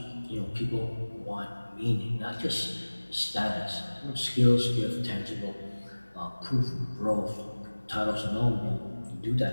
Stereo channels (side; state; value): both; inverted; correlation -1.00